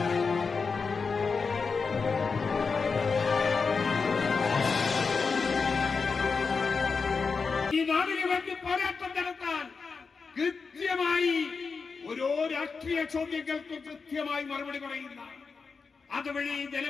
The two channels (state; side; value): quieter; right; 4.9 dB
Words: ഈ നാടിന് വേണ്ടി പോരാട്ടം നടത്താൻ കൃത്യമായി ഓരോ രാഷ്ട്രീയ ചോദ്യങ്ങൾക്ക് കൃത്യമായി മറുപടി പറയുന്ന, അതുവഴി